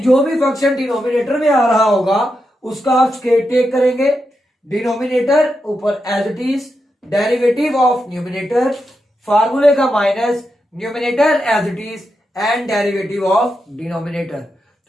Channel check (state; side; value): normal; both; correlation 0.86